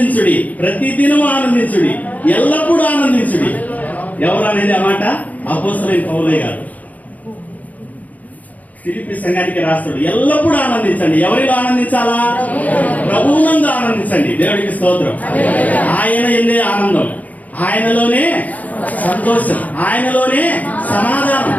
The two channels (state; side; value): late; right; 0.076 ms